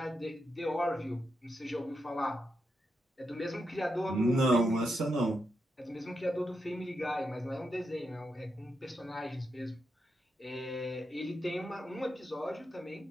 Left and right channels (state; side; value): normal; both; correlation 0.84